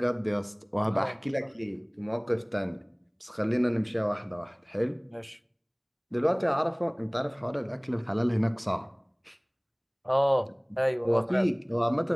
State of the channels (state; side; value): identical; both; correlation 1.00